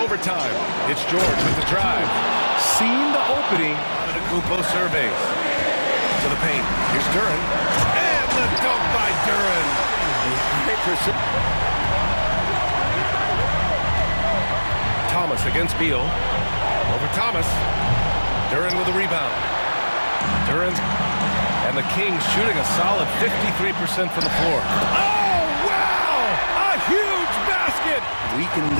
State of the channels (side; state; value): both; inverted; correlation -1.00